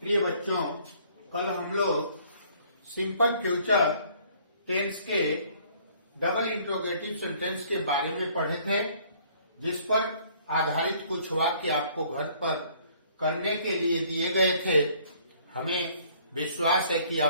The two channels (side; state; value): both; inverted; correlation -0.59